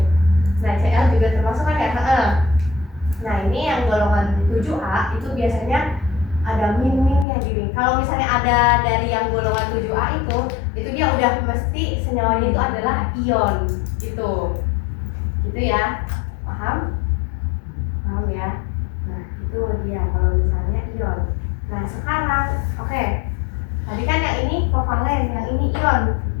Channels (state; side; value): drops out; right; at 7.2 s